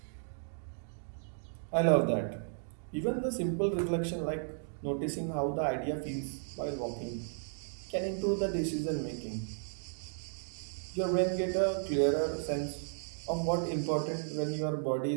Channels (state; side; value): silent; left; digital silence